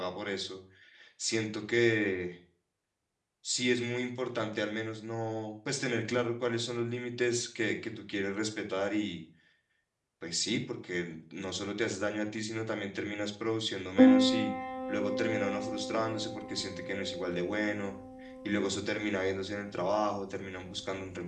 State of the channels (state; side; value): identical; both; correlation 1.00